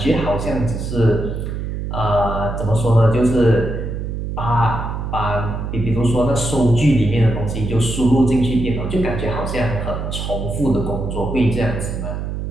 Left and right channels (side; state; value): right; noise; hum, 4 dB below the sound